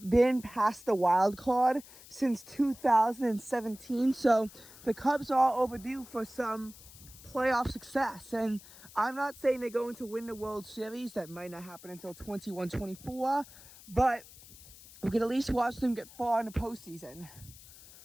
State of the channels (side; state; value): left; noise; hiss, 20 dB below the sound